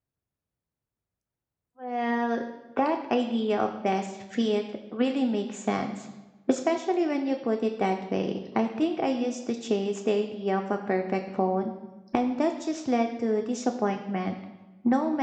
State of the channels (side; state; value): both; identical; correlation 1.00